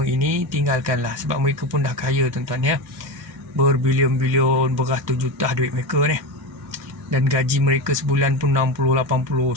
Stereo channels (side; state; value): both; normal; correlation 0.20